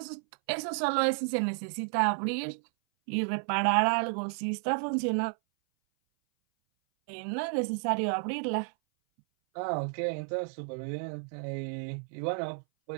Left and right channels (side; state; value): left; silent; 57 dB below the other